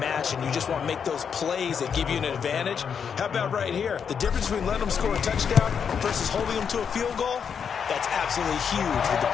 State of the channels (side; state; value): right; quieter; 7.0 dB